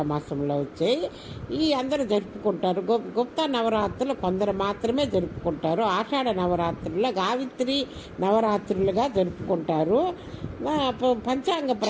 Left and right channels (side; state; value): both; identical; correlation 1.00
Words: మాసంలో వచ్చాయి. ఈ అందరూ జరుపుకుంటారు. గుప్తా నవరాత్రులు కొందరు మాత్రమే జరుపుకుంటారు. ఆషాఢ నవరాత్రుల్లో గావిత్రి నవరాత్రులుగా జరుపుకుంటారు. పంచాంగ